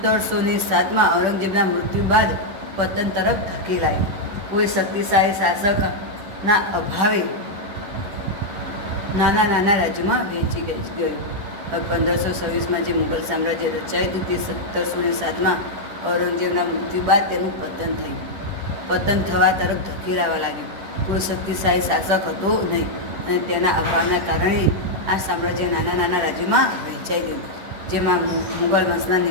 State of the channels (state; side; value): late; left; 10 ms